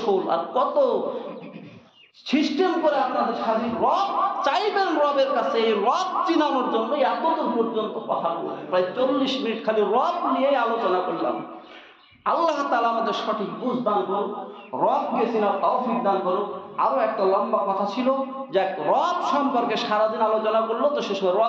আর কত সিস্টেম করে আপনাদের সাথে রব চাইবেন রবের কাছে। এই রব চিনানোর জন্য এতদূর পর্যন্ত কথা বললাম, প্রায় 40 মিনিট খালি রব নিয়ে আলোচনা করলাম। আল্লাহ তাআলা আমাদের সঠিক বুঝ দান করুন, রবকে চিনার তৌফিক দান করুন। আরো একটা লম্বা কথা ছিল যে রব সম্পর্কে সারাদিন আলোচনা করলো, তো শেষ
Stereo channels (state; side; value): identical; both; correlation 1.00